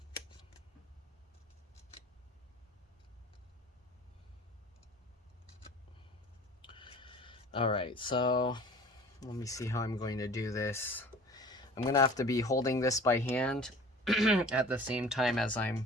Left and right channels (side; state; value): both; normal; correlation 0.44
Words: Alright, so let me see how I'm going to do this. I'm going to have to be holding this by hand at the same time as